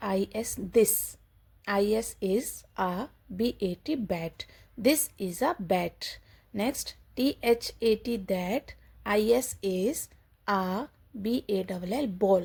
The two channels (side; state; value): both; identical; correlation 1.00